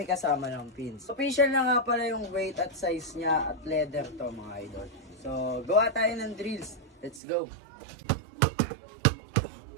kasama ng pins. Official na nga pala yung weight at size niya at leather to mga idol. So, gawa tayo ng drills. Let's go!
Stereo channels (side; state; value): left; drops out; at 7.2 s